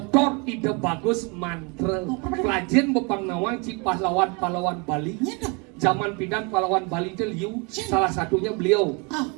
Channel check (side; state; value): left; quieter; 31.2 dB